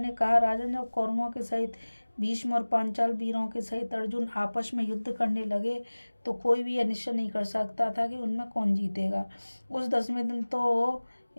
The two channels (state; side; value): inverted; both; correlation -1.00